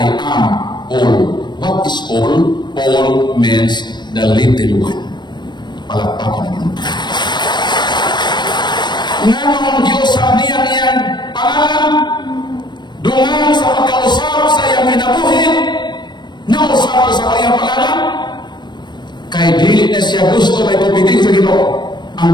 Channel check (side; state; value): right; late; 0.22 ms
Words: am Paul. What is Paul? Paul means the little one. Palakpakan na yun. Nga nung Diyos sa niyan pangalan, dungan sa pagkausap sa iyang kinabuhi, nausap sa kanyang pangalan, kay dili na siya gusto may pupitin sa Ginoo.